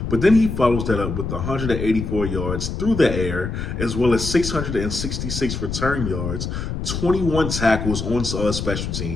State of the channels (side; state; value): left; noise; rumble, 4 dB below the sound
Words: But then he follows that up with 184 yards through the air, as well as 666 return yards, 21 tackles on special